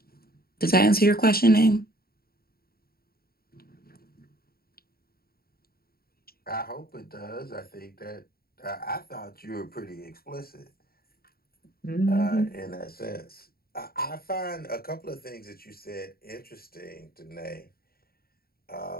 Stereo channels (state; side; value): late; right; 0.44 ms